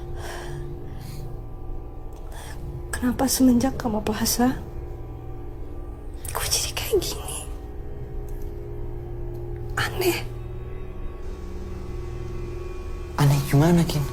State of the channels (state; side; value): identical; both; correlation 1.00